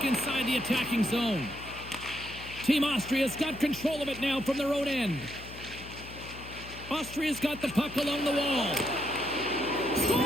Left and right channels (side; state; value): left; noise; hum, 14 dB below the sound